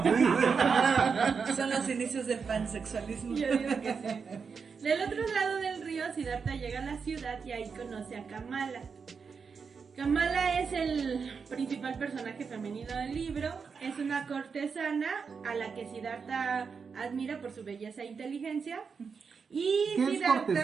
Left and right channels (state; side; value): quieter; left; 5.6 dB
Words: Son los inicios del pansexualismo. Yo digo que sí. Del otro lado del río, Siddhartha llega a la ciudad y ahí conoce a Kamala. Kamala es el principal personaje femenino del libro. Es una cortesana a la que Siddhartha admira por su belleza e inteligencia. Y ¿Qué es Siddhartha,